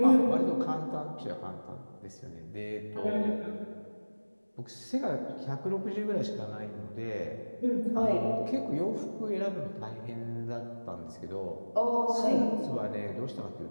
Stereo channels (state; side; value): inverted; both; correlation -1.00